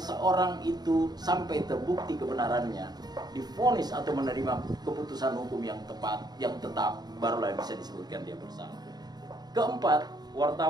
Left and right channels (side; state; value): left; late; 0.20 ms